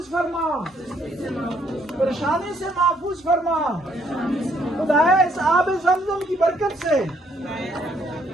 فرما، پریشانی سے محفوظ فرما. خدایا اس آب زمزم کی برکت سے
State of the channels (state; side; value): normal; both; correlation 0.69